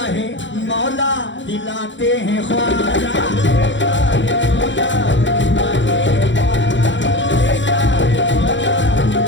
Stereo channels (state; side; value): late; right; 0.54 ms